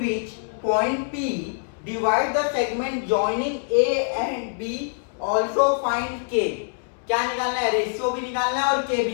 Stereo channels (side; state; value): right; silent; 62 dB below the other